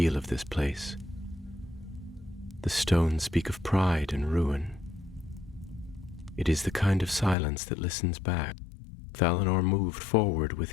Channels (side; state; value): right; drops out; at 7.4 s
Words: of this place. The stones speak of pride and ruin. It is the kind of silence that listens back. Valinor moved forward